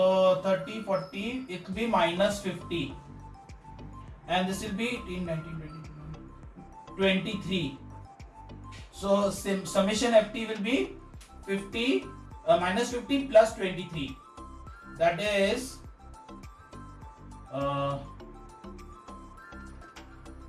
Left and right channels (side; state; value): both; identical; correlation 1.00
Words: 30, 40, it will be minus 50, and this will be 18, 19, 20, 23. So summation ft will be 50 minus 50 plus 23. That is